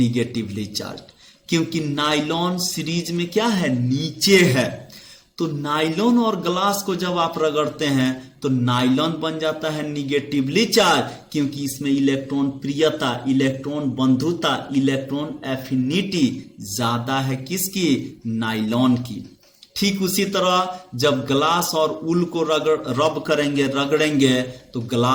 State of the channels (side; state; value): both; identical; correlation 1.00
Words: चार्ज, क्योंकि नाइलॉन सीरीज में क्या है? नीचे है। तो नाइलॉन और ग्लास को जब आप रगड़ते हैं तो नाइलॉन बन जाता है निगेटिवली चार्ज, क्योंकि इसमें इलेक्ट्रॉन प्रियता, इलेक्ट्रॉन बंधुता, इलेक्ट्रॉन एफिनिटी ज्यादा है किसकी? नाइलॉन की। ठीक उसी तरह जब ग्लास और वूल को रब करेंगे, रगड़ेंगे, तो